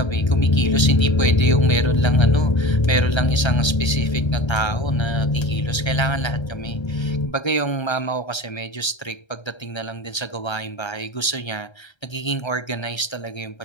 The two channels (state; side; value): late; right; 1.3 ms